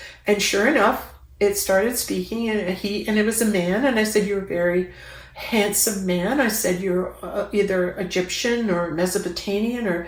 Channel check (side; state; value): both; identical; correlation 1.00